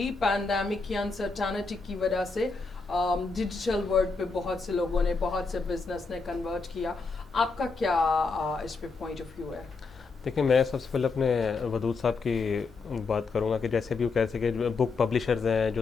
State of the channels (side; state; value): right; quieter; 4.3 dB